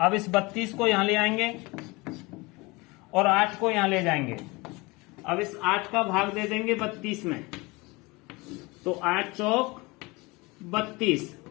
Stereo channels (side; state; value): right; quieter; 24.5 dB